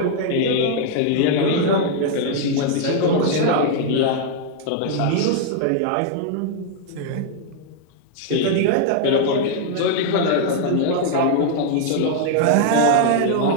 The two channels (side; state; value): both; different; correlation -0.01